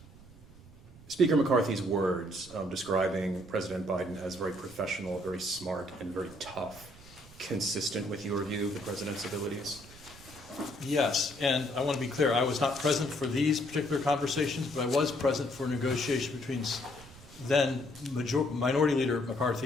Speaker McCarthy's words describing President Biden as very professional, very smart, and very tough consistent with your view of the president's abilities? Yes, and I want to be clear, I was not present for these particular conversations, but I was present for negotiation between then Minority Leader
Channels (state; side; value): noise; right; rumble, 21 dB below the sound